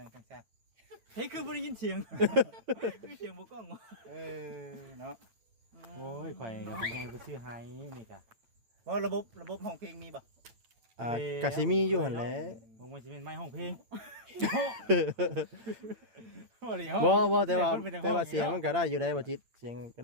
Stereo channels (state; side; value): late; left; 8.8 ms